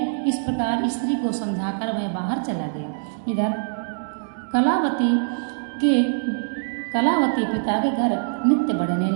इस प्रकार स्त्री को समझाकर वह बाहर चला गया। इधर कलावती पिता के घर नित्य बढ़ने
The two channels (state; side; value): silent; left; digital silence